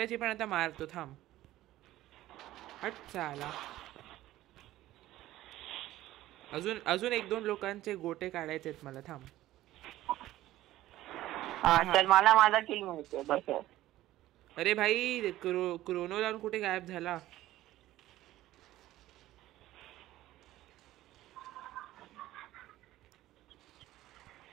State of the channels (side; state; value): left; quieter; 15.2 dB